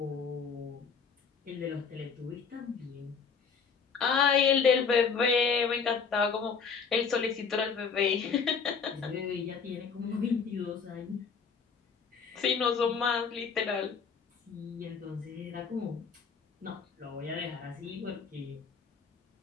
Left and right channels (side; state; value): right; quieter; 5.8 dB